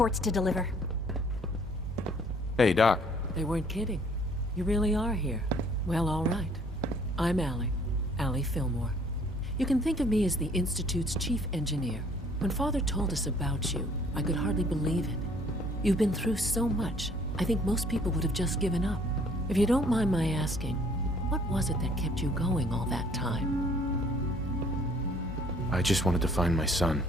to deliver. Hey, Doc. They weren't kidding. You really are here. Well, all right. I'm Allie Fillmore. You can think of me as the Institute's chief engineer. When Father told us about you, I could hardly believe it. You've been through so much, I think most people would have just given up. If you don't mind my asking, what was it that kept you going all that time? I just wanted to find my son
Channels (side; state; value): both; normal; correlation 0.59